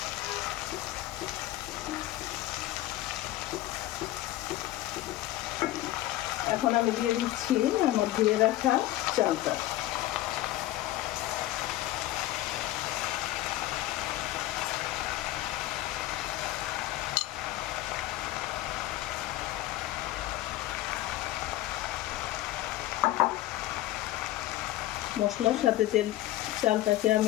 এখন আমি দিয়ে দিচ্ছি আমার ধুয়ে রাখা চালটা। মশলার সাথে চালটাকে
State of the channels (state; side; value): quieter; right; 15.6 dB